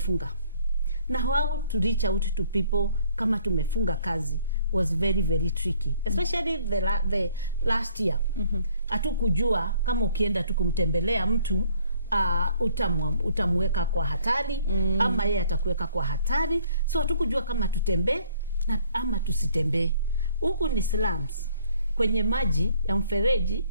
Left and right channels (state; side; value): inverted; both; correlation -0.61